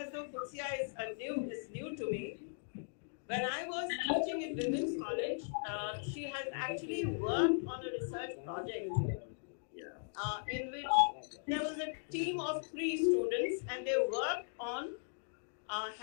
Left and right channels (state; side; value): silent; right; digital silence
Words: though Qudsia is new to me. When I was teaching in Women's College, she has actually worked on a research project in which there was a team of 3 students and they worked on